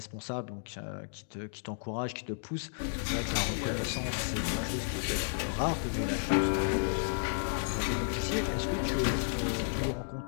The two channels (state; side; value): silent; right; digital silence